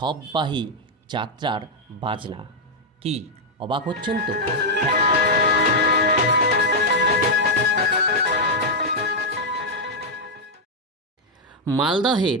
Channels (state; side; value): normal; both; correlation -0.02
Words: যাত্রার বাজনা। কি অবাক হচ্ছেন তো? মালদহের